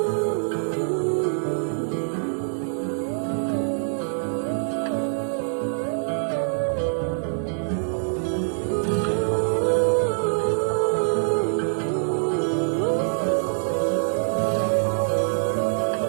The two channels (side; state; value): left; silent; 62 dB below the other